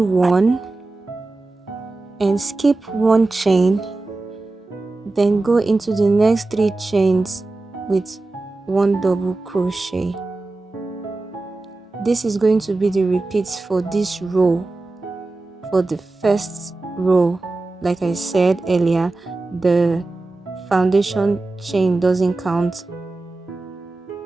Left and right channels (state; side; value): quieter; left; 3.2 dB